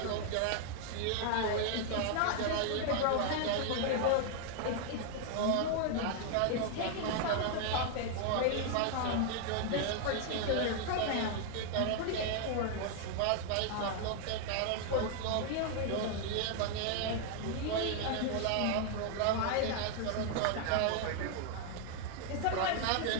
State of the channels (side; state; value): both; different; correlation 0.00